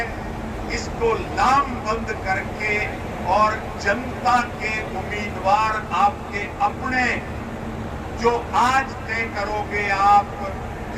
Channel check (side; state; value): both; identical; correlation 1.00